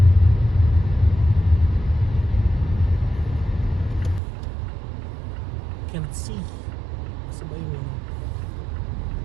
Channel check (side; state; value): left; drops out; at 4.2 s